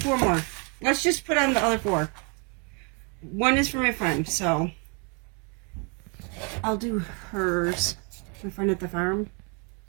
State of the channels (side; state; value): left; quieter; 34.2 dB